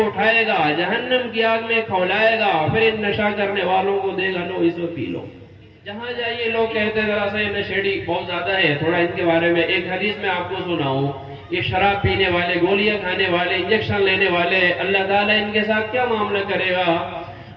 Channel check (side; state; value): both; identical; correlation 1.00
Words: اٹھائے گا، جہنم کی آگ میں کھولائے گا، پھر ان نشہ کرنے والوں کو دے گا، لو اس کو پی لو۔ جہاں جائیے لوگ کہتے ہیں ذرا سا یہ نشیڑی بہت زیادہ ہے، تھوڑا ان کے بارے میں ایک حدیث میں آپ کو سناؤں۔ یہ شراب پینے والے، گولیاں کھانے والے، انجیکشن لینے والے، اللہ تعالیٰ ان کے ساتھ کیا معاملہ کرے گا؟